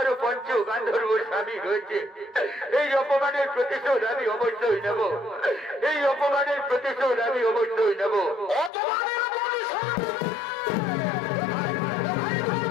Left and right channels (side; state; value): right; drops out; at 8.7 s